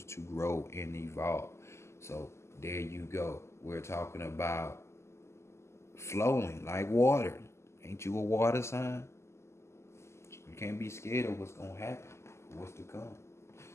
to grow and evolve. So there you go. We're talking about flowing like water. Ain't you a water sign? You can't be scared of what's gonna happen, what's to come.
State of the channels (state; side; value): late; right; 0.13 ms